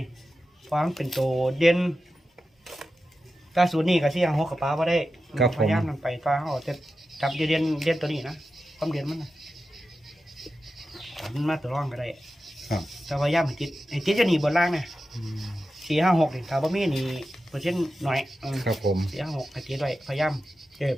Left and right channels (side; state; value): both; normal; correlation 0.92